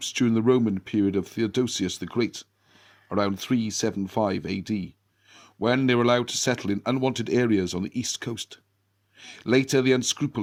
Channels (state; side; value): identical; both; correlation 1.00